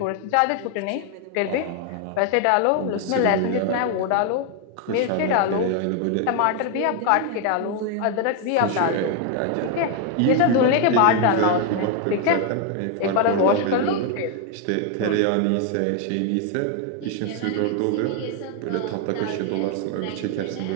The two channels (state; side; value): different; both; correlation 0.01